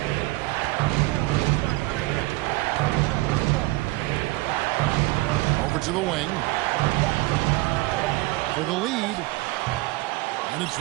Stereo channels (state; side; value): quieter; left; 21.0 dB